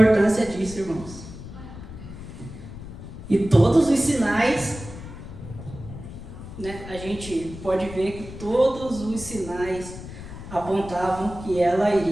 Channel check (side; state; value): left; noise; rumble, 12 dB below the sound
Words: disso, irmãos. E todos os sinais, né, a gente pode ver que todos os sinais apontavam que ela